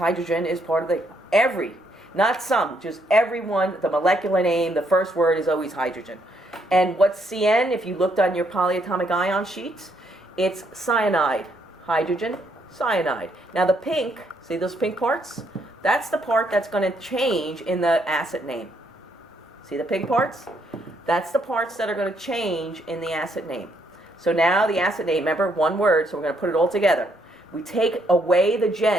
is part of not some, just every one. The molecular name, the first word is always hydrogen. And what's CN, if you looked on your polyatomic ion sheet, it's cyanide. Hydrogen, cyanide. Now the pink, see those pink parts? That's the part that's going to change in the acid name. See the pink parts? That's the parts that are going to change in the acid name. So now the acid name, remember, one word, so we're going to put it all together. We take away the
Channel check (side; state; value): both; normal; correlation 0.73